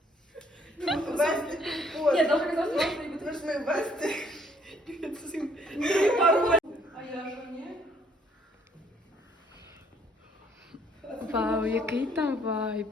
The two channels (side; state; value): both; normal; correlation 0.65